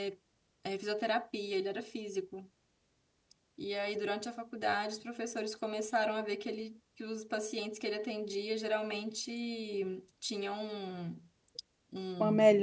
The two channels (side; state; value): both; identical; correlation 1.00